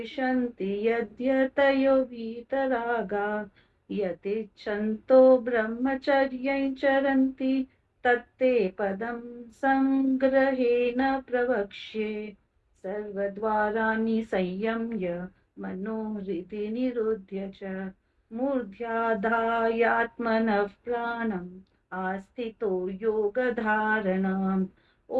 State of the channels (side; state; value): both; identical; correlation 1.00